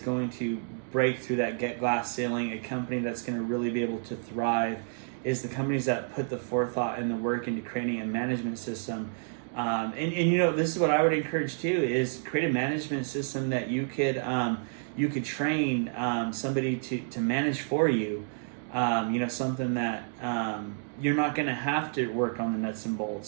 to break through that get glass ceiling. A company that's going to really be able to thrive is the companies that put the forethought and the work into creating a management system. This is what I would encourage too, is create a management system that you could train somebody to manage for you. Something that you're not going to have to work on the nuts and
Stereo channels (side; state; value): left; silent; digital silence